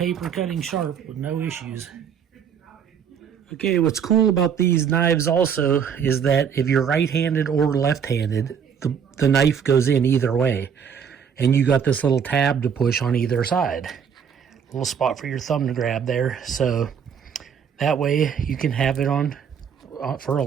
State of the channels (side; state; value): left; quieter; 7.4 dB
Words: cutting sharp with no issues. Okay, what's cool about these knives also is that if you're right-handed or left-handed, the knife goes in either way. And you got this little tab to push on either side. little spot for your thumb to grab there. So that way you can have it on for a